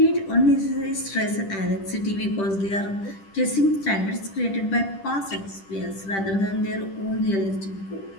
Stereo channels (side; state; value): right; late; 10 ms